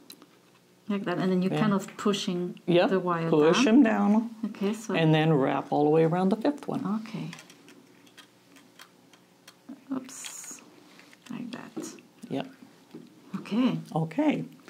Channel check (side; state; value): both; identical; correlation 1.00